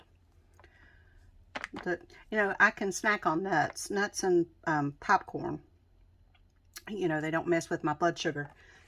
You know, I can snack on nuts and popcorn. You know, they don't mess with my blood sugar.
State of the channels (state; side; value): identical; both; correlation 1.00